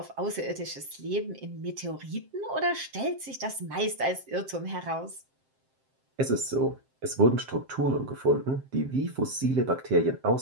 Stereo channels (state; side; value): late; left; 7.6 ms